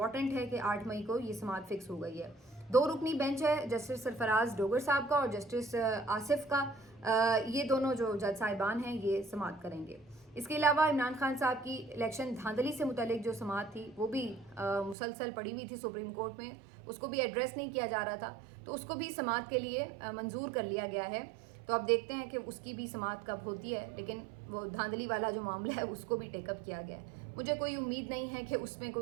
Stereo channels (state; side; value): drops out; left; at 15.0 s